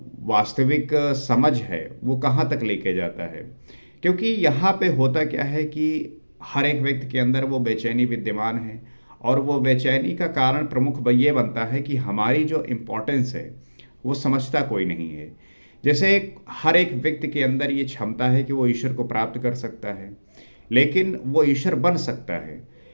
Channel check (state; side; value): inverted; both; correlation -1.00